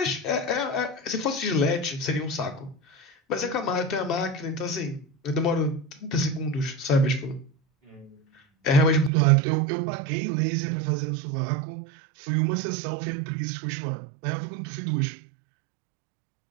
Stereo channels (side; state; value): left; drops out; at 9.1 s